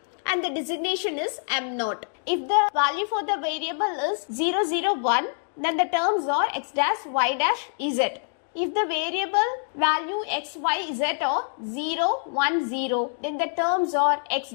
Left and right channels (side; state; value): right; silent; 61 dB below the other